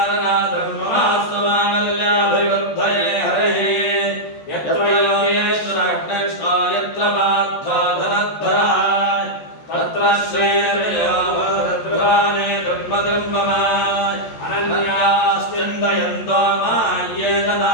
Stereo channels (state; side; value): late; right; 14 ms